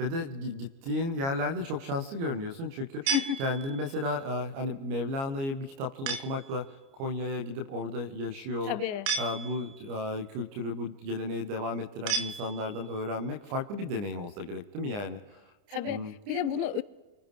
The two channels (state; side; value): late; left; 29 ms